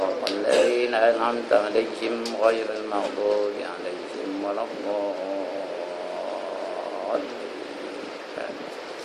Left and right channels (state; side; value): identical; both; correlation 1.00